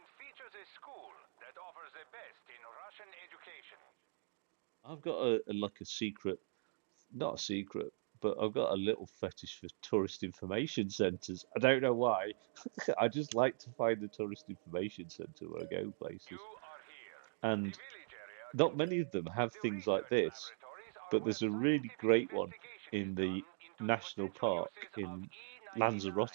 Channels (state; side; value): silent; left; digital silence